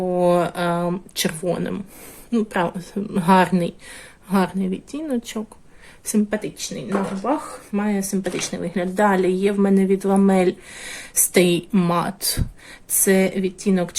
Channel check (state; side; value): identical; both; correlation 1.00